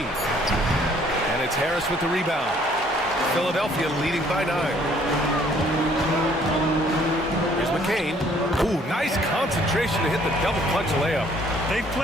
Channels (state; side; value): normal; both; correlation 0.61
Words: And it's Harris with the rebound. Philadelphia leading by 9. Here's McCain. Ooh, nice concentration to hit the double clutch layup. They